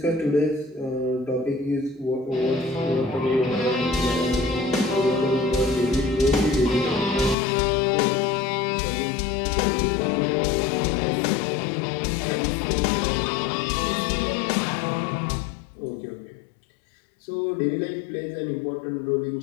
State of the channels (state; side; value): drops out; right; at 7.4 s